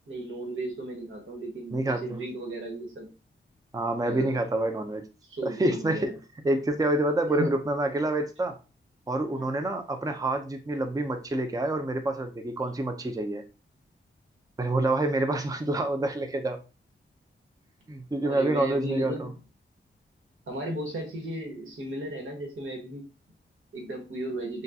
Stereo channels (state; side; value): normal; both; correlation 0.68